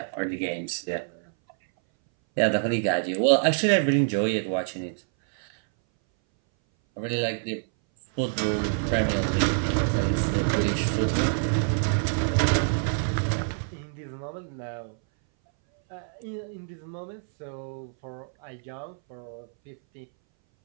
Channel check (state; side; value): silent; left; 59 dB below the other